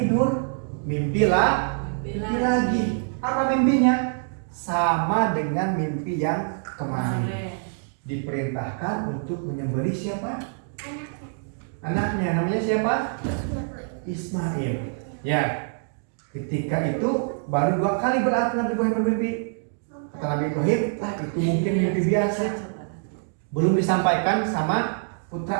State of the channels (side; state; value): left; silent; digital silence